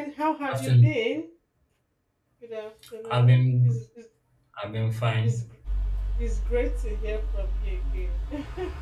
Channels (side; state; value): both; identical; correlation 1.00